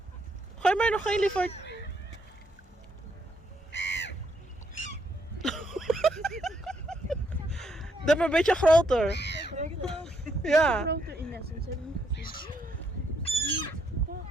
Gooi maar nog één, lieverd. Doe maar een beetje groter. Ja. Groter in Essence, heb ik niet gezien.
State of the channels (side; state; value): both; normal; correlation 0.74